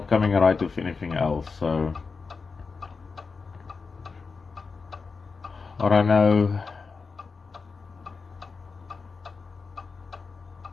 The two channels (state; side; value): quieter; right; 4.7 dB